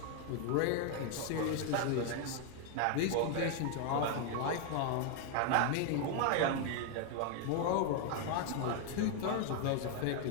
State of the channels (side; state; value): both; different; correlation 0.00